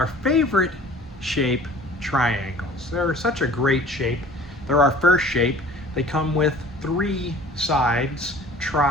favorite shape, triangles. They're such a great shape. They're our first shape. They come with 3 sides,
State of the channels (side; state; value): both; normal; correlation 0.48